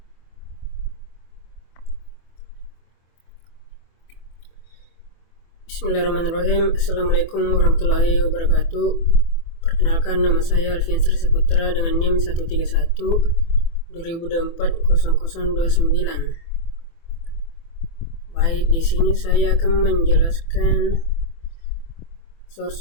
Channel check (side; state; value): right; late; 24 ms